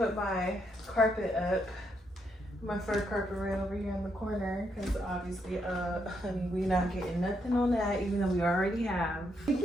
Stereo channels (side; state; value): both; normal; correlation 0.78